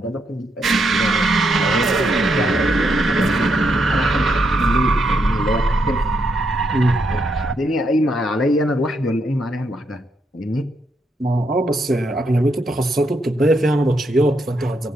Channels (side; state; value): both; normal; correlation 0.79